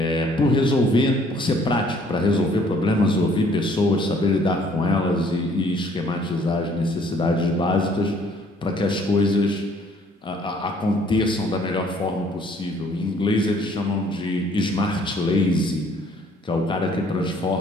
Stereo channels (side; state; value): both; normal; correlation 0.60